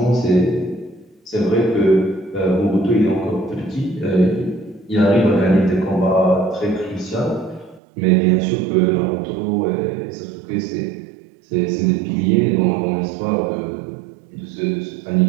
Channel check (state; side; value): drops out; left; at 7.8 s